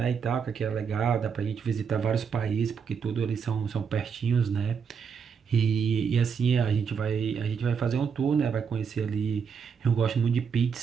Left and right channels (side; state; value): left; quieter; 6.5 dB